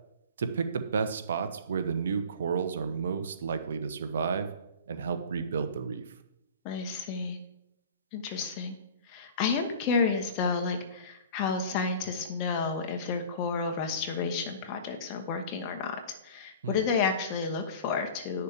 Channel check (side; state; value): both; inverted; correlation -0.39